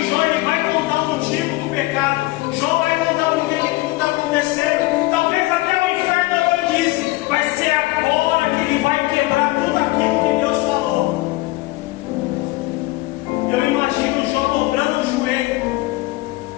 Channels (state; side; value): quieter; right; 20.2 dB